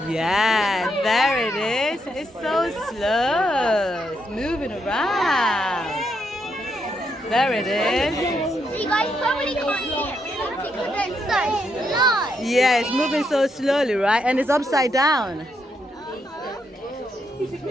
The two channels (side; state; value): both; normal; correlation 0.79